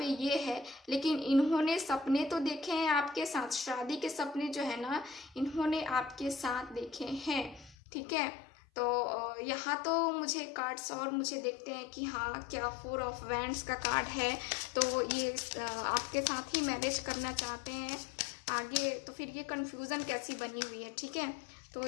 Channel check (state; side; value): drops out; right; at 7.8 s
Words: ये है, लेकिन इन्होंने सपने तो देखे हैं आपके साथ, शादी के सपने जो है ना इन्होंने आपके साथ देखे हैं। ठीक है, तो यहाँ तो मुझे कार्ड्स और मुझे देखते हैं कि हाँ क्या 4 ऑफ वैंड्स का कार्ड है, तो ये आपके साथ ही मैरिज करना चाहते हैं आगे। तो फिर ये कंफ्यूजन कैसी बनी हुई है। ठीक है, तो